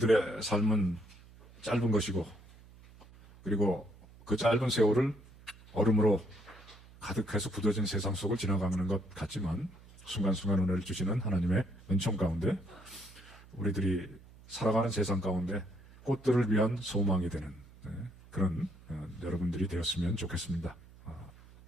삶은 짧은 것이고, 그리고 그 짧은 세월을 얼음으로 가득해서 굳어진 세상 속을 지나가는 것 같지만, 순간순간 은혜를 주시는 하나님의 은총 가운데 우리들이 살아가는 세상 가운데 꽃들을 위한 소망이 되는 그런 여러분들이 되었으면 좋겠습니다.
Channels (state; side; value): noise; right; hum, 22 dB below the sound